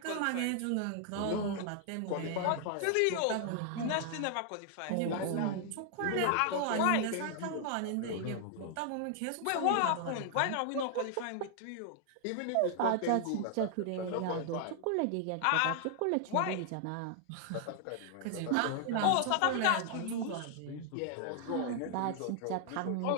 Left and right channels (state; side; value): different; both; correlation 0.00